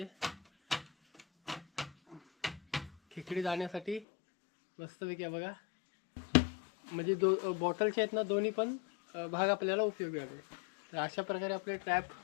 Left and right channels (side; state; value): right; drops out; at 4.0 s